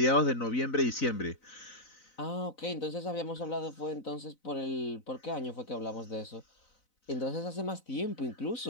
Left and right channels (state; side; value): late; right; 4.0 ms